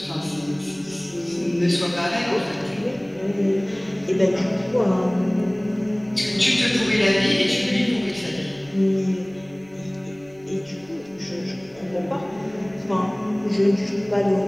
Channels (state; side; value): noise; left; rumble, 29 dB below the sound